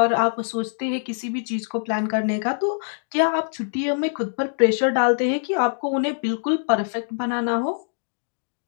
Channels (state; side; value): silent; right; digital silence